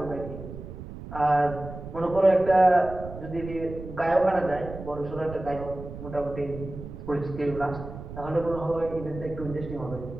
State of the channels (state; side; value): noise; right; rumble, 11 dB below the sound